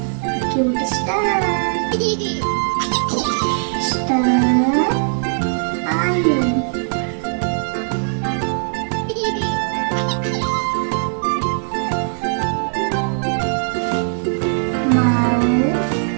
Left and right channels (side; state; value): left; silent; 66 dB below the other